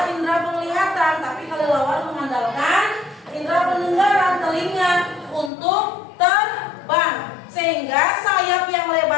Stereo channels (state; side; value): drops out; right; at 5.5 s